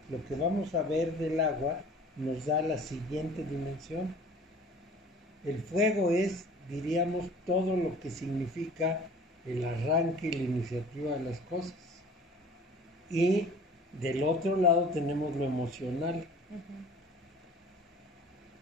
lo que vamos a ver del agua nos da la siguiente dimensión. El fuego es, diríamos, todo lo que significa el arranque y la iniciativa de las cosas. Y del otro lado tenemos lo emocional,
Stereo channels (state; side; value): normal; both; correlation 0.46